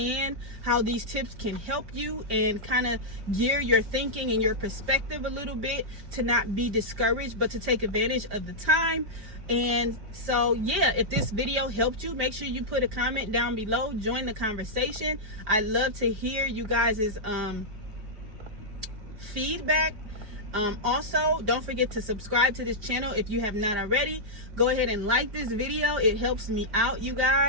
how these tips can help you and kind of gear your thinking and your perspective a little bit to not be discouraged, but to take advantage of the time. And so, yeah, if this video helped you, make sure you put a comment down below. Join the conversation. I love to hear you guys' feedback. Also, don't forget to subscribe to this channel if you have not already. Go ahead and like this video. It helps me out, you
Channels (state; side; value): late; left; 5.1 ms